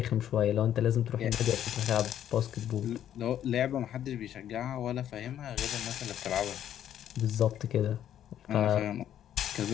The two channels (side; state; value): right; quieter; 10.7 dB